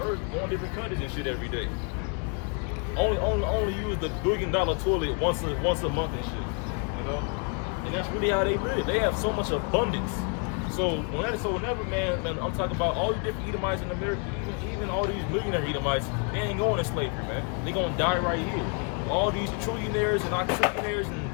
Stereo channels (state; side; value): quieter; right; 38.4 dB